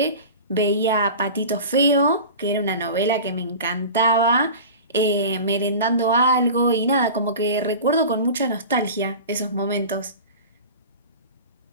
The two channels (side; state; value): both; inverted; correlation -0.34